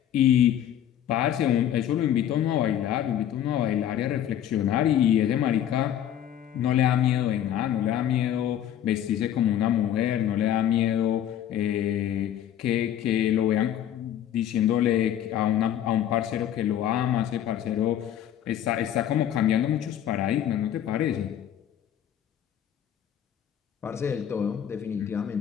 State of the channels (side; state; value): right; quieter; 10.6 dB